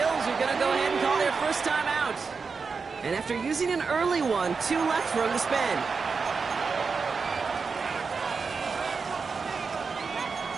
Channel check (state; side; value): quieter; left; 5.0 dB